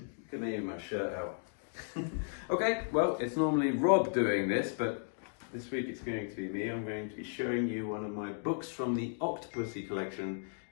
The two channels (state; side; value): silent; right; digital silence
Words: Look at me with my shirt out. Okay, well, it's normally Rob doing this, but this week it's going to be me. I'm going to be showing you one of my books from the Octopussy collection.